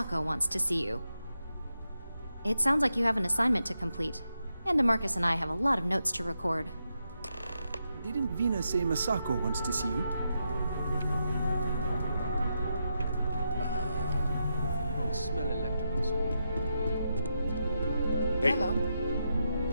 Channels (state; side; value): inverted; both; correlation -0.84